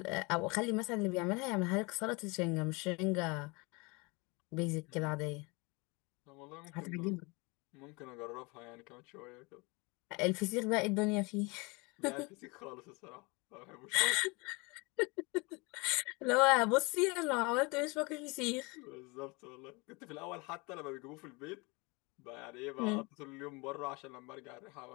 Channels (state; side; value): quieter; right; 27.3 dB